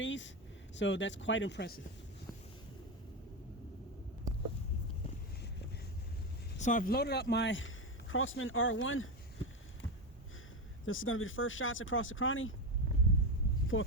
So that's quite impressive. So I've loaded up my Crossan R1. This is going to be the first shots across the cranny for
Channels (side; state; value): both; normal; correlation 0.13